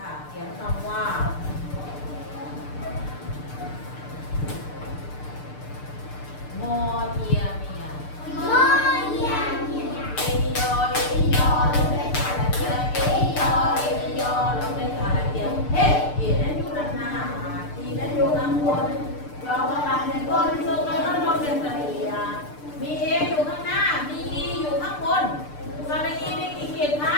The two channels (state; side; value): late; right; 6.7 ms